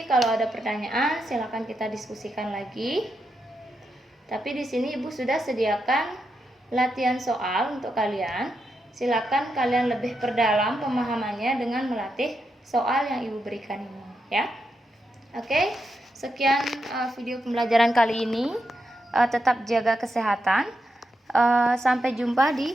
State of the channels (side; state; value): both; normal; correlation 0.85